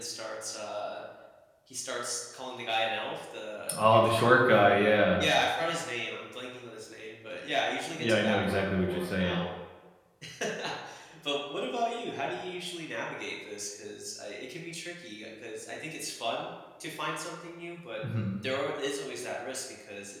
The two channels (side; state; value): both; identical; correlation 1.00